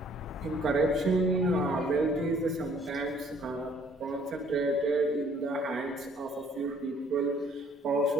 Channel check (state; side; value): normal; both; correlation 0.61